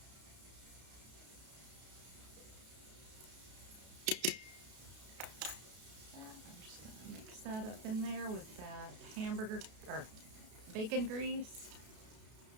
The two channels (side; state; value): left; late; 32 ms